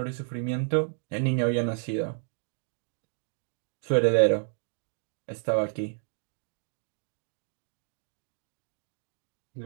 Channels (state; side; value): silent; left; digital silence